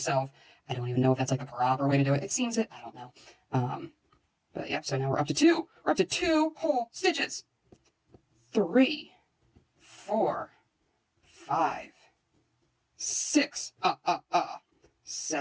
I don't even know if that's like a proper way to do it. It seems it. I don't know. But yep, so now we're up to 2. We're up to 2 whole stitches. 3, 4, 5, 6,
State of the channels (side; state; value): both; identical; correlation 1.00